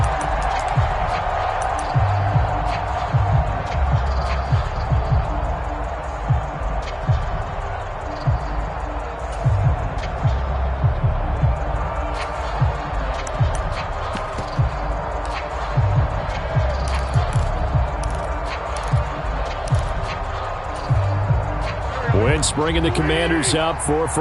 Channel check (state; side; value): identical; both; correlation 1.00